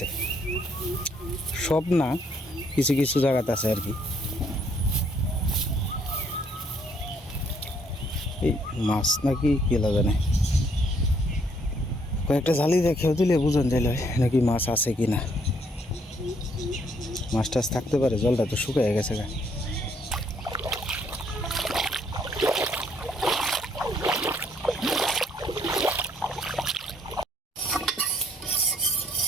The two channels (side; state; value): both; normal; correlation 0.67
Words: সব না, কিছু কিছু জায়গাতে আছে আর কি। এই মাছ নাকি কি জানে, কয়েকটা জালি দেখেও দিলে বুঝন যাইল নাকি মাছ আছে কি না। মাছ টাছ থাকতে পারে, জলটা তো শুকিয়ে গেছে গা।